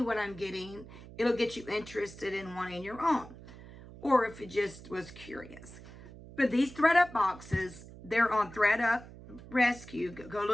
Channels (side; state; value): right; noise; hum, 17 dB below the sound